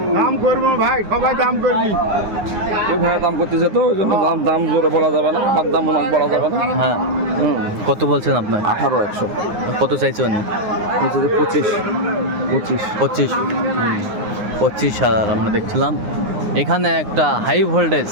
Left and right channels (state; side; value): late; left; 9.6 ms